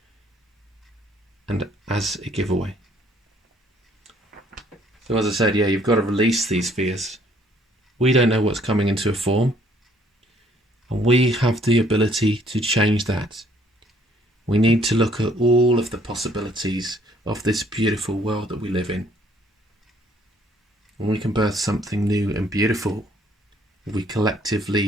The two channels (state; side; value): normal; both; correlation 0.63